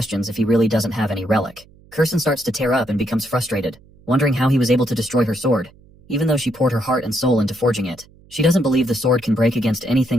if he really doesn't have any relic. Kurson starts to tear up and becomes frustrated, wondering how he was able to destroy her sword, even though she poured her heart and soul into forging it. She doesn't believe the sword can break against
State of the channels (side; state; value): right; noise; hum, 27 dB below the sound